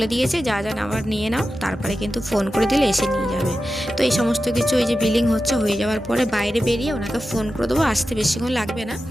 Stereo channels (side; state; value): both; normal; correlation 0.92